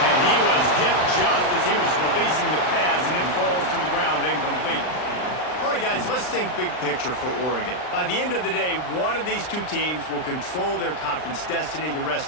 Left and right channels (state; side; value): late; right; 39 ms